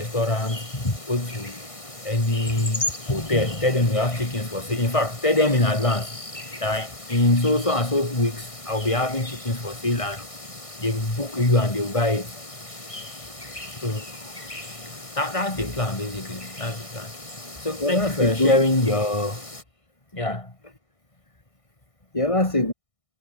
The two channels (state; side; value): late; right; 1.6 ms